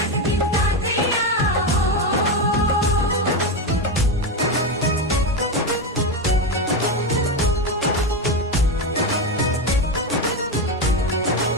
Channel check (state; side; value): normal; both; correlation 0.13